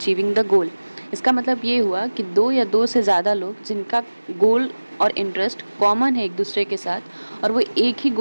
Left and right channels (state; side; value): inverted; both; correlation -1.00